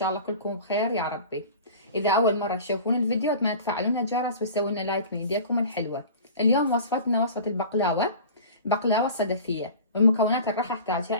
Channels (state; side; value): inverted; both; correlation -0.39